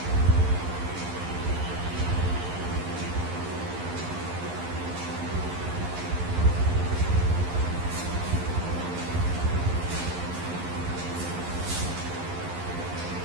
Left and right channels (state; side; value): late; left; 11 ms